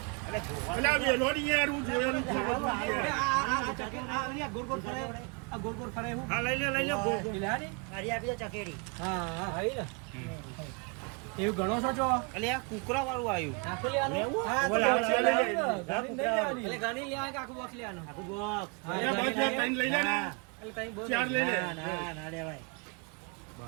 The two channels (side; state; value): left; quieter; 33.8 dB